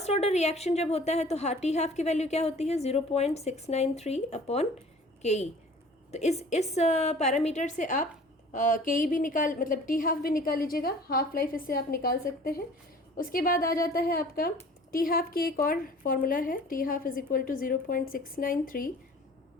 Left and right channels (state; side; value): normal; both; correlation 0.47